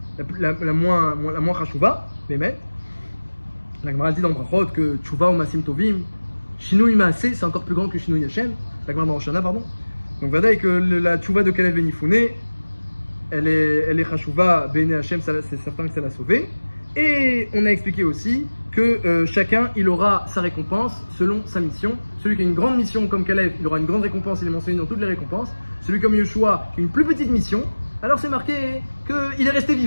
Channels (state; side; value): inverted; both; correlation -1.00